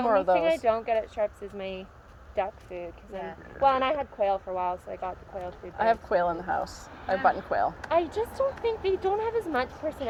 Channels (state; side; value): identical; both; correlation 1.00